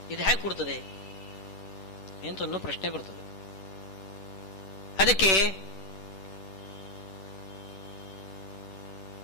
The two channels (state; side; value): late; right; 10 ms